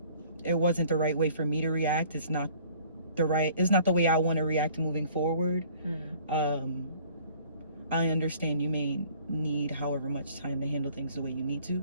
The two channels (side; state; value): both; inverted; correlation -0.53